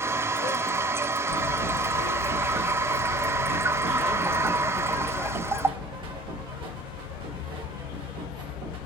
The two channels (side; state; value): both; normal; correlation 0.47